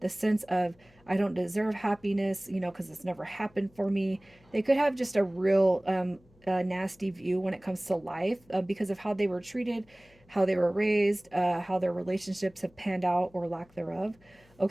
the sense of, I don't deserve happiness, because it's never happened for me. They could have just a real nasty view when it comes to life because of how they were treated, how they were raised, how their relationships have panned out or lack thereof.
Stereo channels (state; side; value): noise; left; hum, 29 dB below the sound